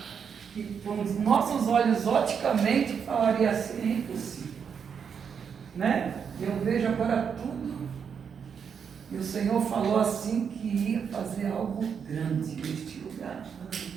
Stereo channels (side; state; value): left; quieter; 6.9 dB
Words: que, com os nossos olhos, oticamente, falaria assim: é impossível. Né? Eu vejo agora tudo, e o Senhor falou assim que ia fazer algo grande neste lugar.